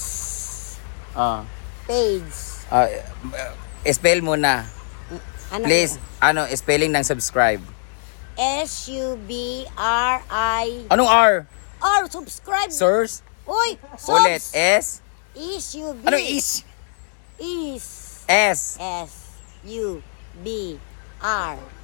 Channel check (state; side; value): silent; right; 64 dB below the other